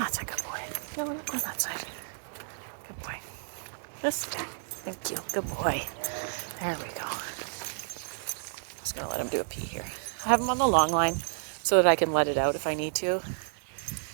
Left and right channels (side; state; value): left; silent; 57 dB below the other